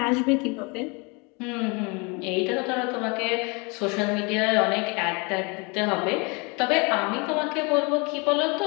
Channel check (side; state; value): right; quieter; 30.2 dB